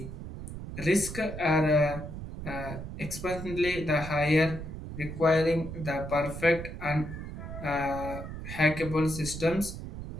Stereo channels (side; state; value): right; noise; rumble, 9 dB below the sound